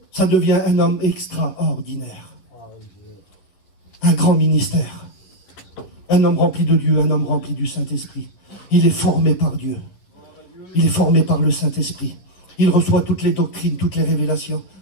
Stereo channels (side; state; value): right; late; 11 ms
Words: Ça devient un homme extraordinaire. Un grand ministère. Un homme rempli de Dieu, un homme rempli du Saint-Esprit. Il est formé par Dieu. Il est formé par le Saint-Esprit. Il reçoit toutes les doctrines, toutes les révélations.